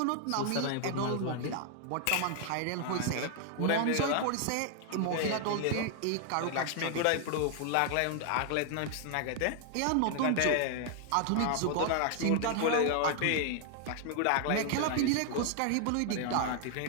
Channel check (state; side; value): different; both; correlation 0.00